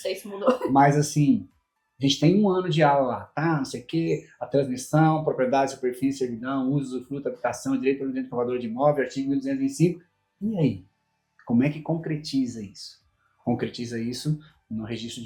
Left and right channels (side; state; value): both; identical; correlation 1.00